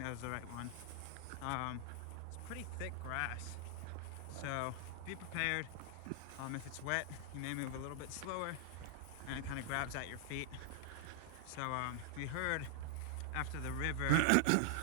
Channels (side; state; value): both; different; correlation 0.00